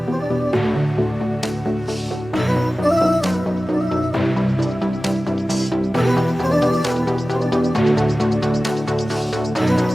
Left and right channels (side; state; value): both; normal; correlation 0.96